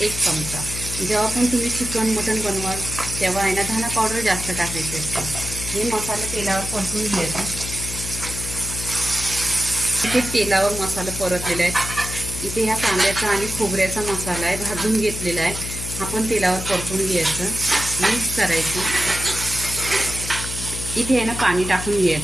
1 चमचा। जेव्हा पण तुम्ही चिकन मटन बनवाल तेव्हा आहे ना धना पावडर जास्त टाकायची असते। हे मसाला तेलावर परतून घ्यायचा। इथे तेलावर मसाला परतलेला आहे। इथे ह्या कांद्याचा आणि खोबऱ्याचा मसाला आहे, भाजून घेतलेला आहे। हा पण तेलावर परतून घ्यायचं, मिक्स करायचं। इथे आहे ना पाणी टाकून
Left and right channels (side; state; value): left; noise; hum, 8 dB below the sound